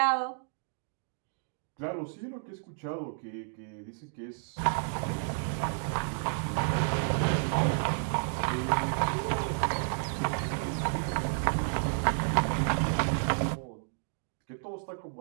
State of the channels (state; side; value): silent; left; digital silence